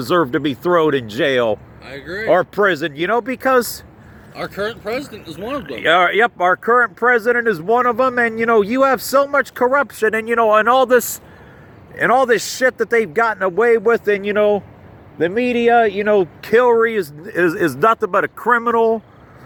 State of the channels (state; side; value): identical; both; correlation 1.00